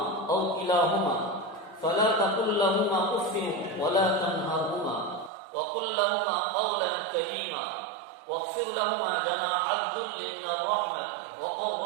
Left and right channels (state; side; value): drops out; left; at 5.3 s